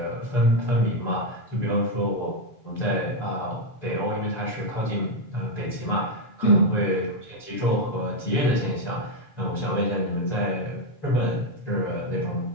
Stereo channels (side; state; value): right; late; 6.9 ms